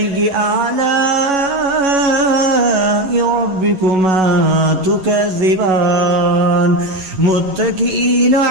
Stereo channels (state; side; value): late; left; 11 ms